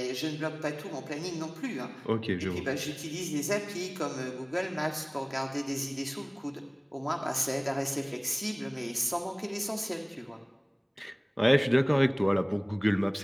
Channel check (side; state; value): both; identical; correlation 1.00